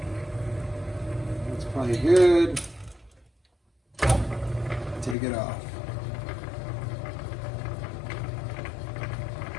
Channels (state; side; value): drops out; right; at 5.2 s